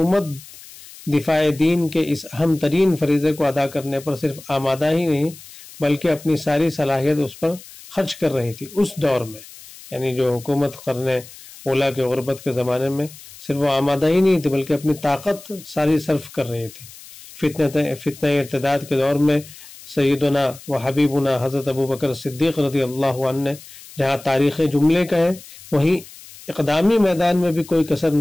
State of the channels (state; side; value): noise; left; hiss, 18 dB below the sound